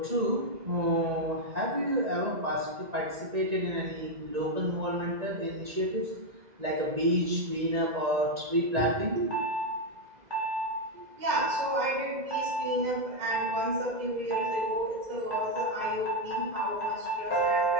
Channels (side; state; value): left; late; 2.0 ms